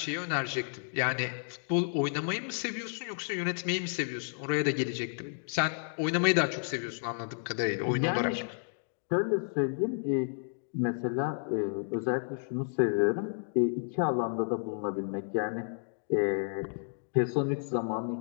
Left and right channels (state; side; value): silent; right; digital silence